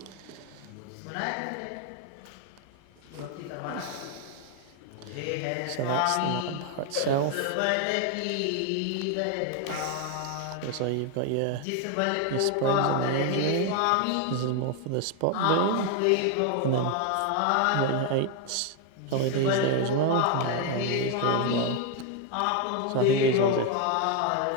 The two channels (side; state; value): both; different; correlation 0.01